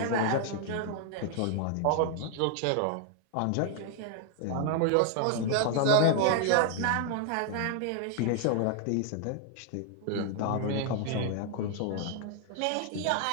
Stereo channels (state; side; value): different; both; correlation 0.00